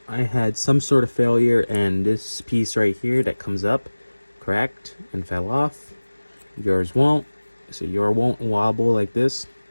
I had some sort of failure, and this piece right here that comes up cracked and fell off. Yours won't. So yours won't wobble like this.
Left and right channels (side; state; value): both; inverted; correlation -1.00